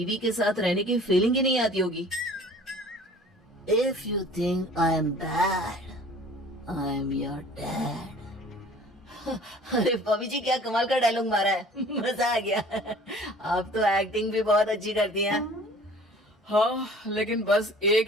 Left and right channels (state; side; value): normal; both; correlation 0.48